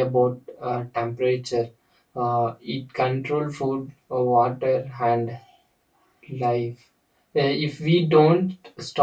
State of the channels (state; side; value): identical; both; correlation 1.00